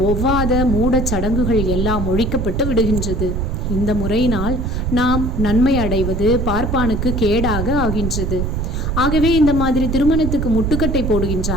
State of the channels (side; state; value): right; noise; rumble, 1 dB below the sound